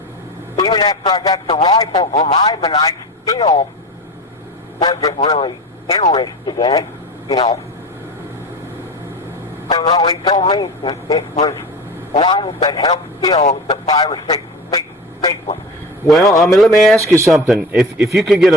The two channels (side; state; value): both; normal; correlation 0.30